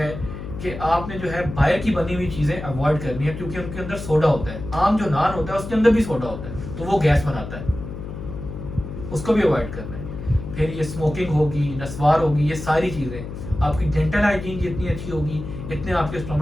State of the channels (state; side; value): noise; left; hum, 9 dB below the sound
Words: कि आपने जो है बाहर की बनी हुई चीजें अवॉइड करनी है, क्योंकि उनके अंदर सोडा होता है। आम जो नान होता है उसके अंदर भी सोडा होता है, तो वो गैस बनाता है, उसको भी अवॉइड करना है। फिर ये स्मोकिंग होगी, नस्वार होगी, ये सारी चीजें, आपकी डेंटल हाइजीन जितनी अच्छी होगी इतने आपके